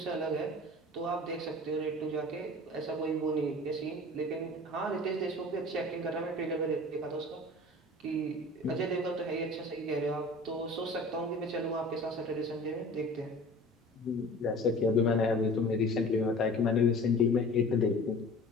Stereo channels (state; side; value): normal; both; correlation 0.42